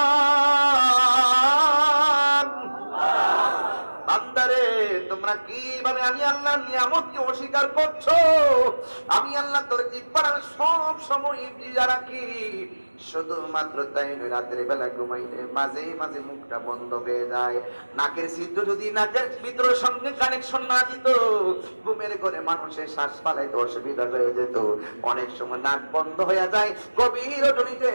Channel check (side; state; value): both; inverted; correlation -1.00